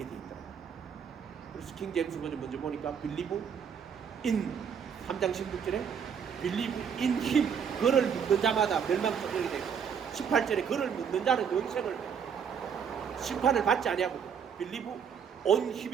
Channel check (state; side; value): quieter; left; 7.3 dB